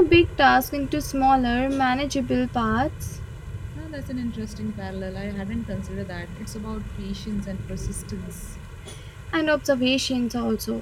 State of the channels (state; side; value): identical; both; correlation 1.00